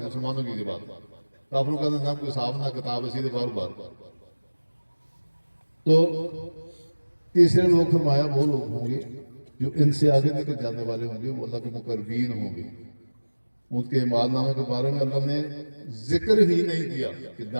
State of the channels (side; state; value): both; inverted; correlation -1.00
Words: مسلمانوں کی بات. کافروں کا نہ کوئی حساب نہ کتاب ہے، سیدھے بار بار. تو تیسرے لوگ فرمایا وہ لوگ ہوں گے جو ان سے آگے نکل جانے والے ہوں گے، وہ اللہ کے مقربین ہوں گے. ان کے اعمال نامے کے بارے میں اللہ نے ذکر ہی نہیں کیا کہ